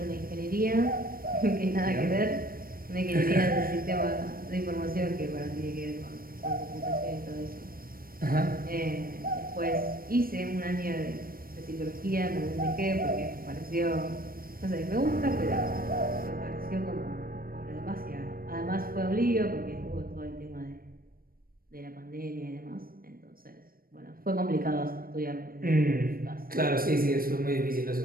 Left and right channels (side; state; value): left; late; 0.43 ms